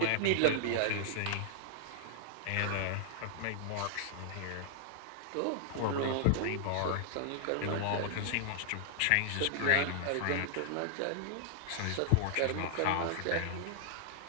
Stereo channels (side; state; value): both; different; correlation -0.01